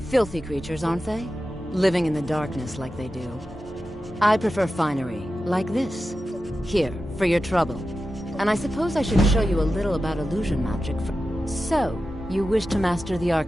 Filthy creatures, aren't they? Living in the darkness like they do. I prefer finery, like this. Here, for your trouble. And I suppose I should show you a little about illusion magic for... So, you wish to master the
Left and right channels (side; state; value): both; normal; correlation 0.92